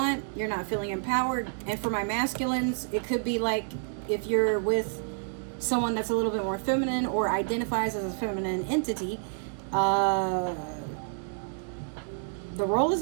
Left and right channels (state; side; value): silent; left; digital silence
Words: You're not feeling empowered. And for my masculines, it could be like if you're with someone that's a little bit more feminine or identifies as a feminine entity, the role is